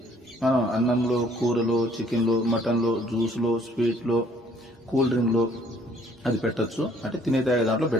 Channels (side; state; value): both; normal; correlation 0.61